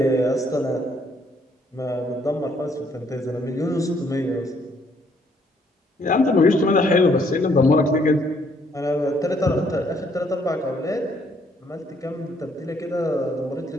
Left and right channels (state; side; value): normal; both; correlation 0.67